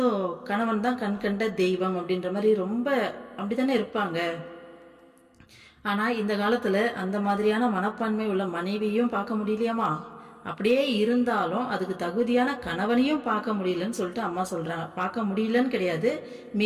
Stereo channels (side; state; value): both; identical; correlation 1.00